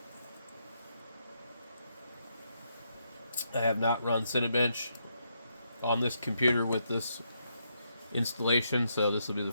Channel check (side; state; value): both; inverted; correlation -0.78